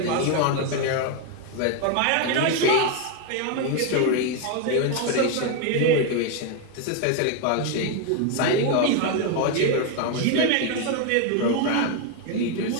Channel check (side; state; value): both; different; correlation 0.01